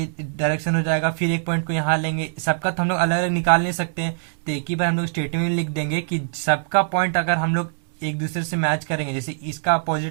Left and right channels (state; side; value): silent; left; digital silence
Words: डायरेक्शन हो जाएगा, फिर एक पॉइंट को यहाँ लेंगे, सबका तो हम लोग अलग अलग निकाल नहीं सकते हैं, तो एक ही बार हम लोग स्टेटमेंट में लिख देंगे कि सबका पॉइंट अगर हम लोग एक दूसरे से मैच करेंगे, जैसे इसका